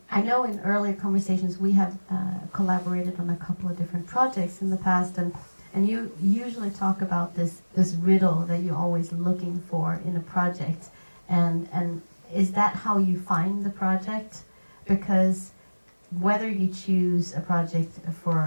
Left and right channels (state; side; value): inverted; both; correlation -1.00